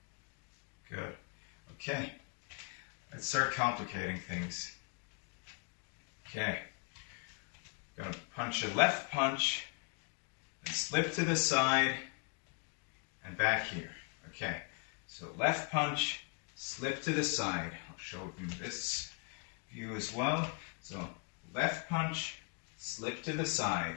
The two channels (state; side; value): quieter; right; 36.1 dB